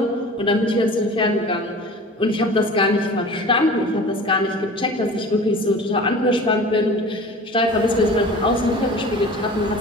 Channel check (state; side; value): normal; both; correlation 0.40